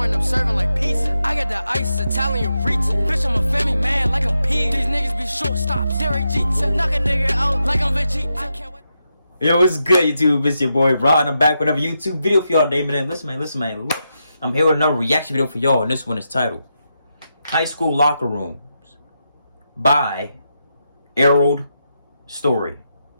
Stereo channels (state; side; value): inverted; both; correlation -0.85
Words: I'm serving like pizza. I got the ice, Italian reach. Bitch, I'm a family man like I'm P. These niggas be shortstops. Derek Jeter, knock a nigga out like I'm Vegeta. I can't wait. Yo, what's good, YouTube? It's your boy Rod, and I'm back with another YouTube video for y'all today, man. Listen, man. Look, I'm here with another reaction video for y'all, and this one is titled High School Locker Rooms by Errol Story.